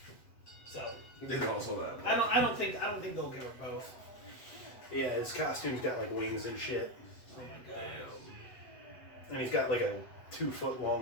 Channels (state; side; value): late; right; 7.9 ms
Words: So There's also that. I don't think they'll give her both. Yeah, his costume's got like wings and shit. Oh my god. And he's got like a 2-foot